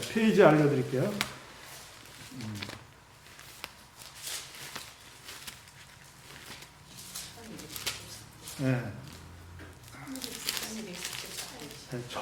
페이지 알려드릴게요. 네.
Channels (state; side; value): identical; both; correlation 1.00